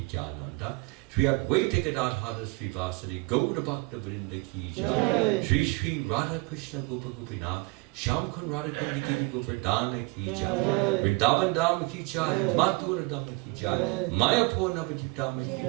Shri Advaita Gadadhara Srivasadi Gauda Bhakta Vrinda ki Jai. Shri Shri Radha Krishna Gopa Gopinath Shyam Kun Radha Kundi Giri Govardhana ki Jai. Vrindavan Dham ki Jai. Mathura Dham ki Jai. Mayapur Navadvip Dham ki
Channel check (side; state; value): left; quieter; 27.1 dB